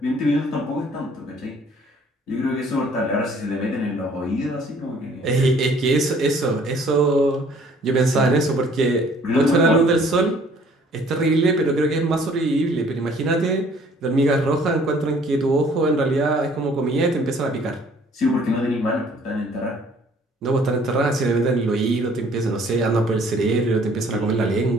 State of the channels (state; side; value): normal; both; correlation 0.57